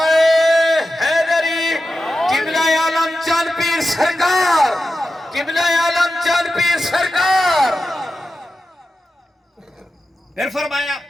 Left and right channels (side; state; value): both; normal; correlation 0.92